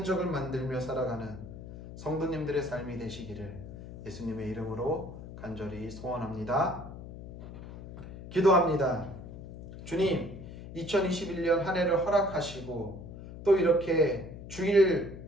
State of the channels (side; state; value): left; noise; hum, 12 dB below the sound